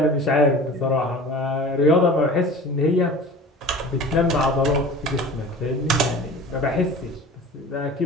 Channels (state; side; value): normal; both; correlation 0.39